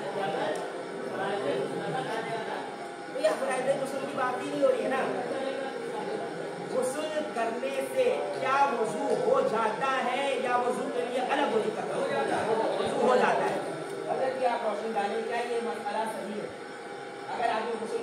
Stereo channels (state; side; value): identical; both; correlation 1.00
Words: गुस्ल की बात ही नहीं हो रही है ना। गुस्ल करने से क्या वजू हो जाता है, या वजू के लिए अलग वजू करना वजू हो जाता है? अगर कि आप रोशनी डालें, क्या ये मसला सही है? अगर आपको गुस्ल